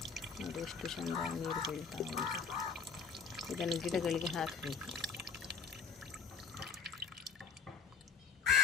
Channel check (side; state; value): right; quieter; 5.8 dB